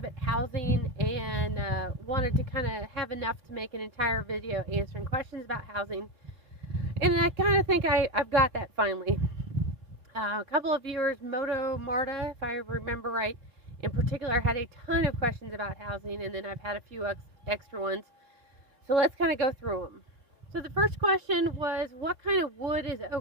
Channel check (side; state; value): left; late; 4.0 ms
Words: housing and wanted to kind of have enough to make an entire video answering questions about housing. And I kind of think I've got that finally. A couple of viewers, Moto Marta, if I remember right, in particular had a ton of questions about housing, and then I've had a few extra ones. So let's kind of go through them. So the first question was, what kind of wood is